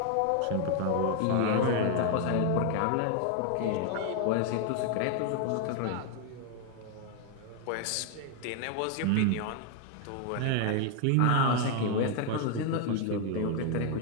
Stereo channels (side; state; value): both; different; correlation 0.00